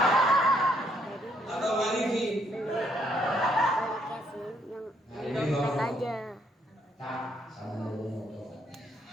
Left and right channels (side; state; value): both; normal; correlation 0.70